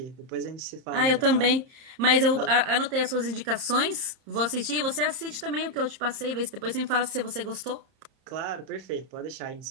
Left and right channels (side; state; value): left; late; 31 ms